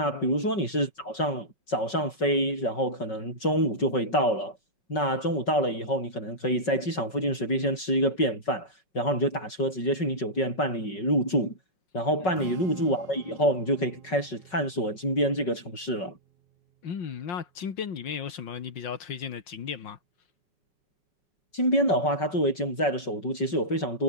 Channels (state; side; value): late; right; 5.3 ms